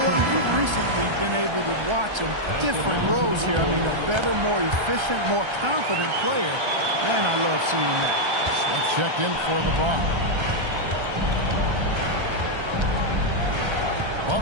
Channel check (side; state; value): left; late; 1.3 ms